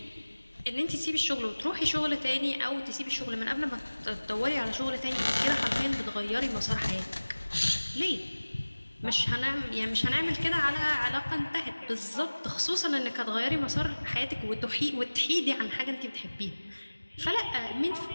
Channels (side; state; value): both; inverted; correlation -1.00